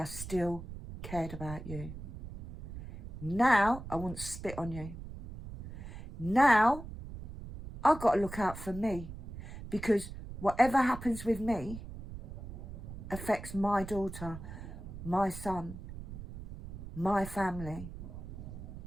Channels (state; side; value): noise; right; rumble, 11 dB below the sound